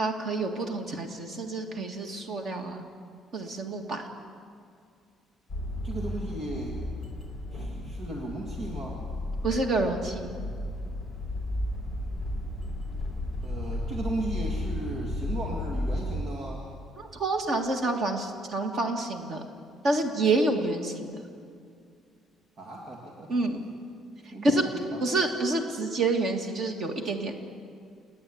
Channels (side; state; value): both; normal; correlation 0.65